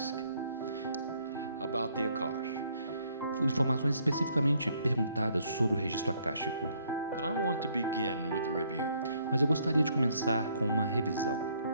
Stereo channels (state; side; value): inverted; both; correlation -0.67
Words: about the Akash. Informações especificamente perguntadas sobre o registro akáshico. But I want to begin with the review. Mas eu gostaria de começar com uma revisão.